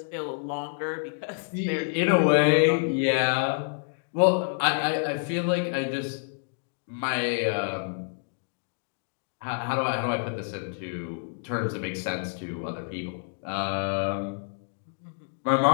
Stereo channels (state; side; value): silent; right; digital silence